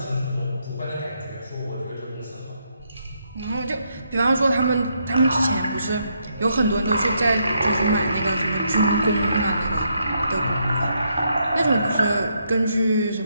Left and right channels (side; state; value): both; inverted; correlation -0.77